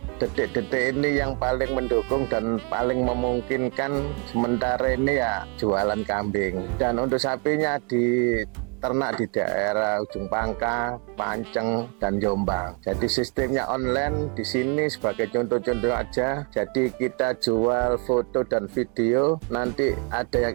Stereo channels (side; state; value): left; quieter; 35.6 dB